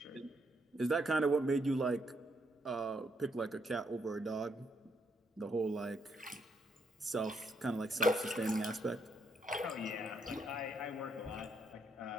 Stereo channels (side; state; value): both; normal; correlation 0.75